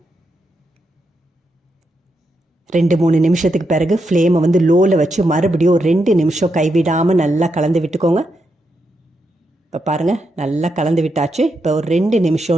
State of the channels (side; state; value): both; normal; correlation 0.83